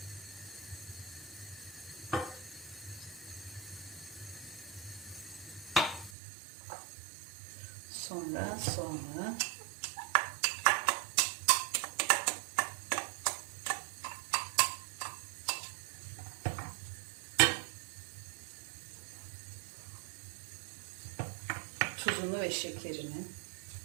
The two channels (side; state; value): left; drops out; at 6.1 s